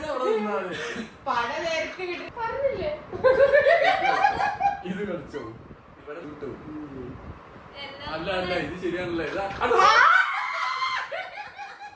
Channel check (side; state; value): both; identical; correlation 1.00